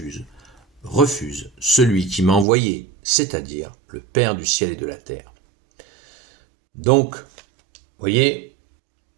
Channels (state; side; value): drops out; left; at 2.5 s